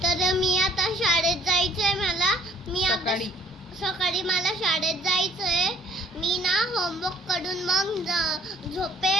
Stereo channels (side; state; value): both; normal; correlation 0.57